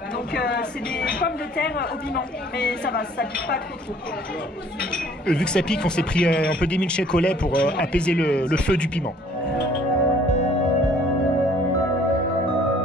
donc c'est des pommes de terre au piment, mais ça va, ça pique pas trop. Vu que ça pique, on s'est pris un peu des milkshakes au lait pour apaiser le feu du piment.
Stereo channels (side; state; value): both; normal; correlation 0.56